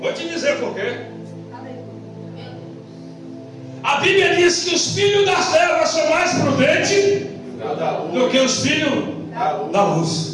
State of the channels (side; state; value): both; identical; correlation 1.00